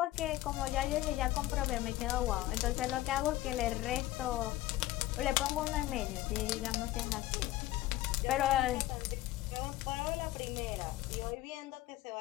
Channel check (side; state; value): right; quieter; 16.0 dB